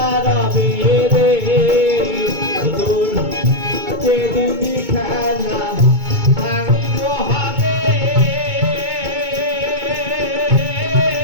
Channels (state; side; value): late; left; 2.2 ms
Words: রবে রে তোর যেদিনই খেলা সাঙ্গ হবে